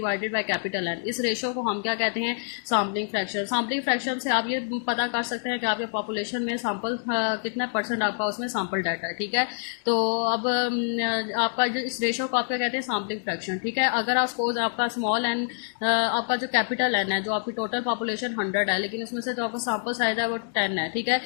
by capital N, इस रेशियो को हम क्या कहते हैं, सैम्पलिंग फ्रैक्शन। सैम्पलिंग फ्रैक्शन से आप ये पता कर सकते हैं कि आपके पॉपुलेशन में सैंपल कितना परसेंट आपका उसमें सैंपल डाटा है, ठीक है। तो अब आपका जो इस रेशियो को आप क्या कहते हैं, सैम्पलिंग फ्रैक्शन, ठीक है। अगर आप सपोज आपका स्मॉल एन, आपका जो कैपिटल एन है, जो आपकी टोटल पॉपुलेशन 100 है, लेकिन उसमें से जो आपका सैंपल साइज है वो 10 है, ठीक है।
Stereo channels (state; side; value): silent; right; digital silence